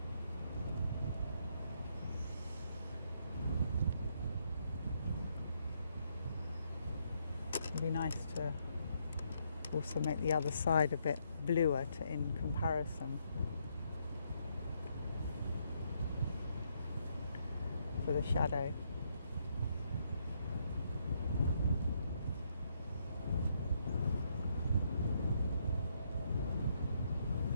It'd be nice to also make the other side a bit bluer in comparison for the shadow.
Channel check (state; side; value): inverted; both; correlation -0.75